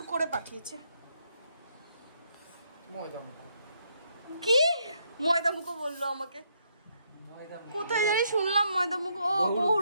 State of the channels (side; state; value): both; inverted; correlation -0.75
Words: করে পাঠিয়েছে। ময়দা মুখো কি ময়দা মুখো বললো আমাকে? কোথায় জানি শুনলাম ময়দা মুখো। ও